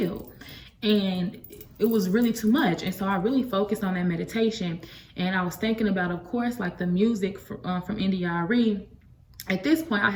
And it was really too much. And so I really focused on that meditation. And I was thinking about, of course, like the music from NDRE. At this point, I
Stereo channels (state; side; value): identical; both; correlation 1.00